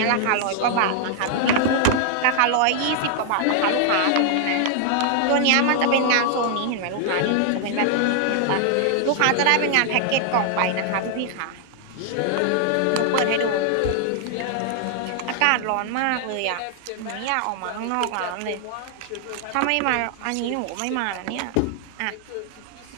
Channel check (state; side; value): different; both; correlation 0.00